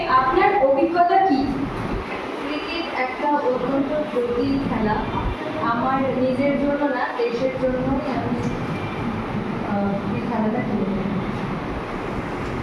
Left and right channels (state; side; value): identical; both; correlation 1.00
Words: আপনার অভিজ্ঞতা কি? ক্রিকেট একটা অত্যন্ত জটিল খেলা। আমার নিজের জন্য না, দেশের জন্যই আমি এই খেলাটা খেলি।